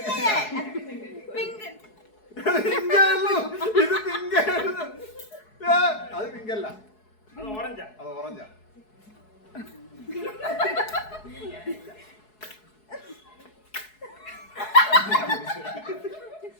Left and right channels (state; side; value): late; right; 4.7 ms